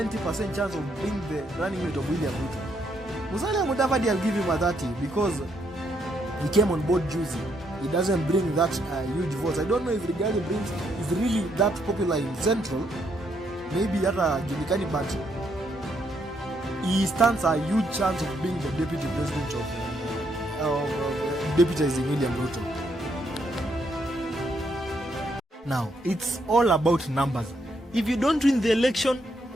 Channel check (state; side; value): normal; both; correlation 0.74